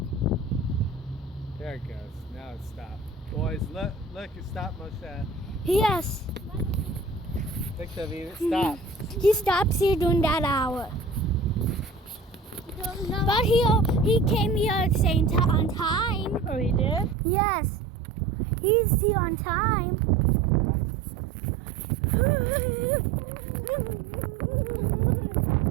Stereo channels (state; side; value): drops out; left; at 17.2 s